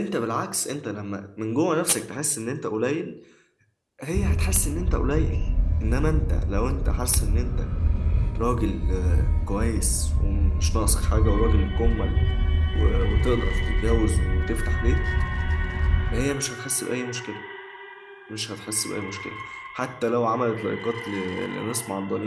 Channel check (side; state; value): both; identical; correlation 1.00